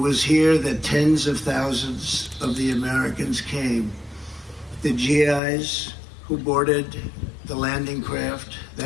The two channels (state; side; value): drops out; right; at 5.4 s